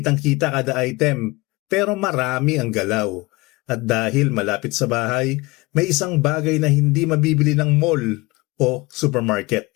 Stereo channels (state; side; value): quieter; right; 23.2 dB